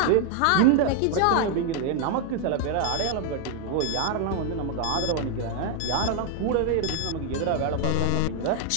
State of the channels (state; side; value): different; both; correlation 0.00